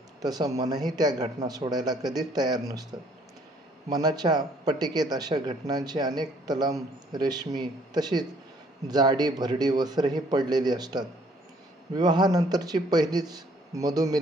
तसं मनही त्या घटना सोडायला कधीच तयार नसतं. मनाच्या पटिकेत अशा घटनांची अनेक तलम रेशमी तशीच जाडी भरडी वस्त्रही पडलेली असतात. विवाहानंतरची पहिलीच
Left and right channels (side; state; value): both; normal; correlation 0.62